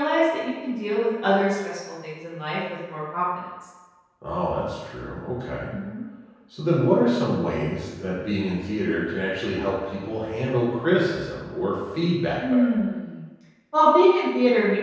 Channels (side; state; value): both; identical; correlation 1.00